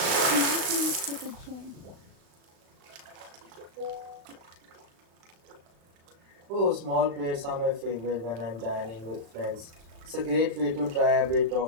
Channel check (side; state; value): left; late; 36 ms